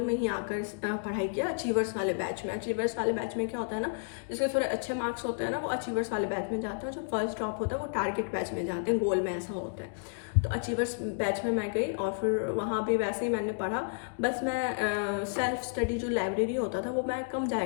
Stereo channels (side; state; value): right; silent; digital silence